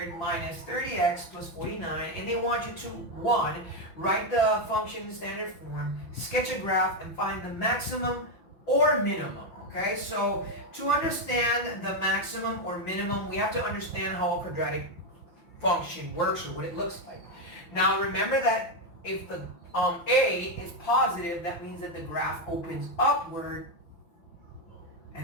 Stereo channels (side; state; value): right; late; 5.9 ms